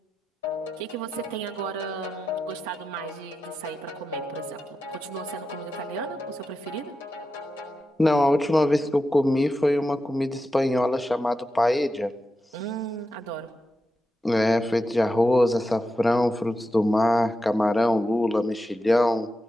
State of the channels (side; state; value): both; normal; correlation 0.90